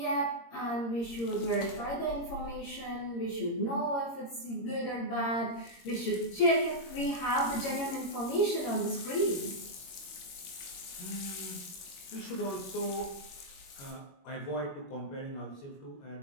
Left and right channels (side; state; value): right; late; 22 ms